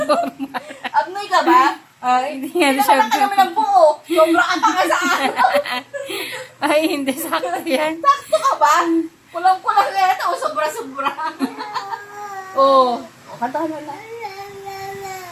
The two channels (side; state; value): both; identical; correlation 1.00